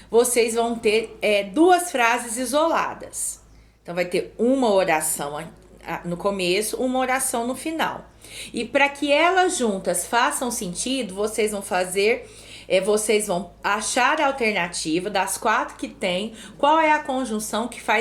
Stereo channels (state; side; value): identical; both; correlation 1.00